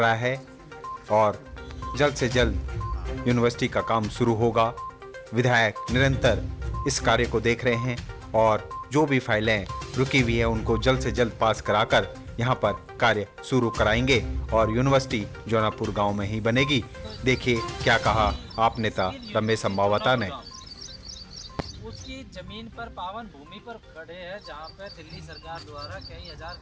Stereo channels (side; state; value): both; identical; correlation 1.00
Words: है और जल्द से जल्द यूनिवर्सिटी का काम शुरू होगा। विधायक निरंतर इस कार्य को देख रहे हैं और जो भी फाइलें रुकी हुई है उनको जल्द से जल्द पास कराकर यहाँ पर कार्य शुरू कराएंगे और यूनिवर्सिटी जौनापुर गांव में ही बनेगी। देखिए क्या कहा आप नेता रमेश संभावता ने। उसकी जमीन पर पावन भूमि पर खड़े हैं जहाँ पे दिल्ली सरकार द्वारा कई हजार